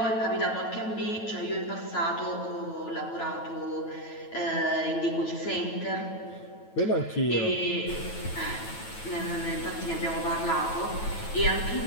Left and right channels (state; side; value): late; right; 9.2 ms